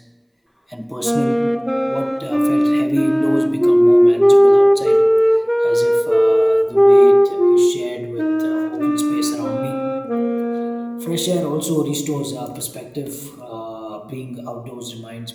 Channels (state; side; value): identical; both; correlation 1.00